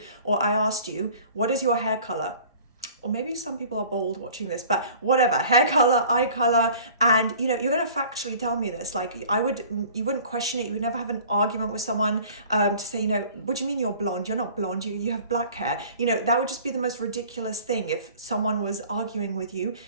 or I asked you, what is your hair color? Or maybe some people are bold watching this, but whatever, hair color, eye color, and you know, you're going to factually tell me this. Like you wouldn't question it. You would never have an argument with someone to say, you know, what do you mean you're blonde? You're not blonde, you have black hair. You know, that would just be the most ridiculous thing if someone was arguing with you.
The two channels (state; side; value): inverted; both; correlation -0.47